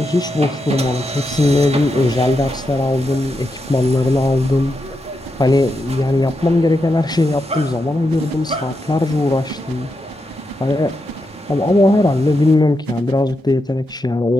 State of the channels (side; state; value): both; normal; correlation 0.85